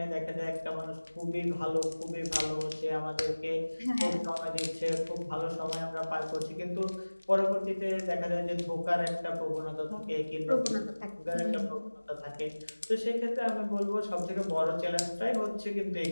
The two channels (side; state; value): both; inverted; correlation -1.00